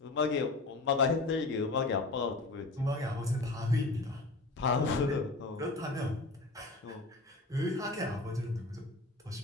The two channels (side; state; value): right; quieter; 3.2 dB